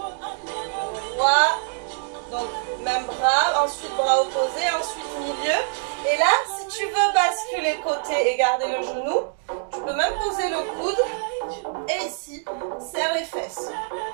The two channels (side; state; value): left; silent; 62 dB below the other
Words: donc même bras, ensuite bras opposés, ensuite milieu. Et là, si tu veux basculer côté et garder le genou, tu peux même poser le coude et ici, serre les fesses.